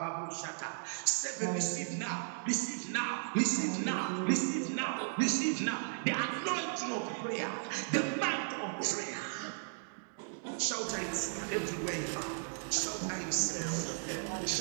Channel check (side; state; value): left; silent; digital silence